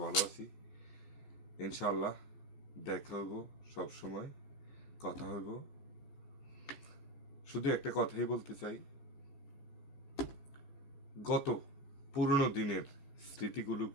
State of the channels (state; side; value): late; right; 14 ms